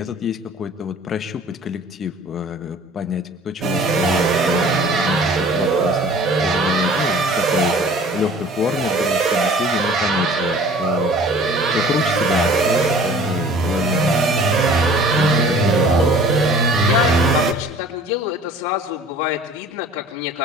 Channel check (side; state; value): both; normal; correlation 0.48